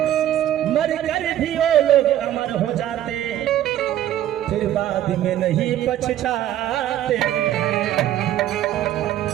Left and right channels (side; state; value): left; quieter; 12.2 dB